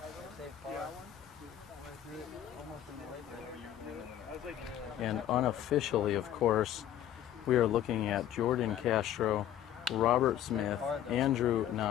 No, And unofficially, of course, we are looking at Jordan Castro, Robert Smith, Andrew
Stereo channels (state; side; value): quieter; right; 11.1 dB